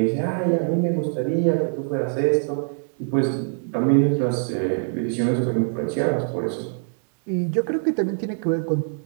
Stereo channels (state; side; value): silent; left; digital silence